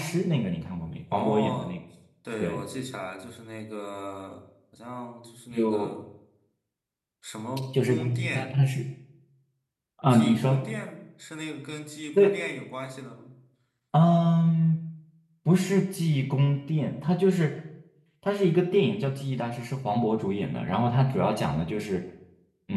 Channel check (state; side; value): identical; both; correlation 1.00